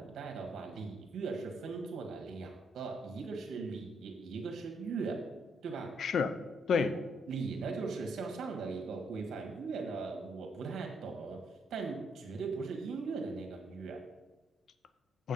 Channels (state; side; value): normal; both; correlation 0.73